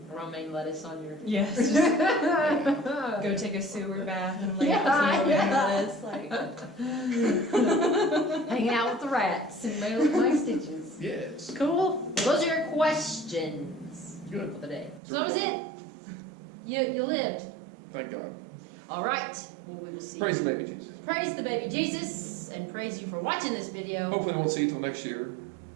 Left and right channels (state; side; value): drops out; left; at 15.0 s